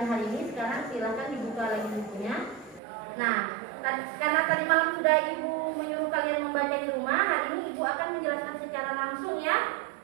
hari ini. Sekarang silakan dibuka lagi bukunya. Nah, karena tadi malam sudah Ibu menyuruh kalian membaca di rumah, hari ini Ibu akan menjelaskan secara langsung ya.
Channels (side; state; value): left; drops out; at 2.8 s